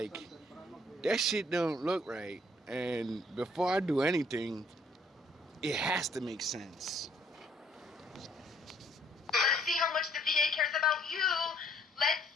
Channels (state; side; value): normal; both; correlation 0.64